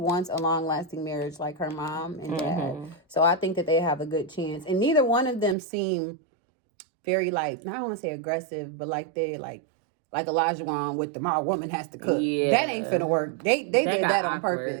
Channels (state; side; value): drops out; left; at 5.6 s